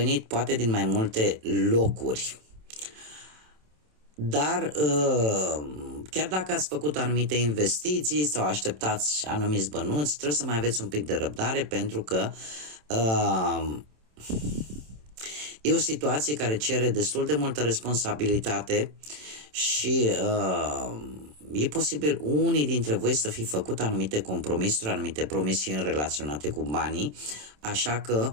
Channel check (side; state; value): left; late; 27 ms